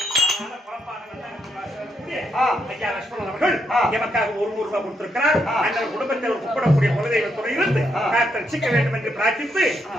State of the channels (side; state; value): both; normal; correlation 0.78